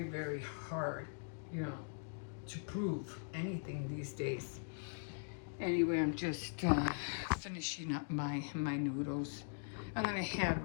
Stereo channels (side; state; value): right; silent; digital silence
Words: very hard, you know, to prove anything these days. Anyway, I'm just finishing up my noodles. I'm gonna